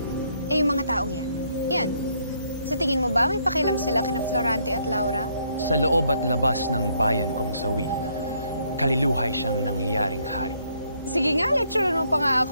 Eh, yung mga taong yan. Sa tingin mo ba may pakialam sila kina Florante at Laura? Sa loob at labas ng bayan kong sawi, kaliluhay siyang nangyayaring hari. Sige nga, lecturean mo pa nga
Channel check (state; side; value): inverted; both; correlation -0.70